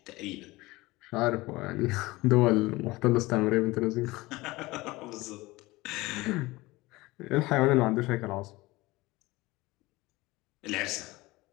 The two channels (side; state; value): right; quieter; 20.8 dB